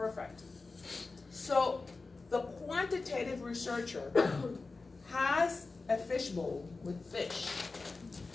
So the quantitative researcher has a fishbowl with fish,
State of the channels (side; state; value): right; quieter; 3.8 dB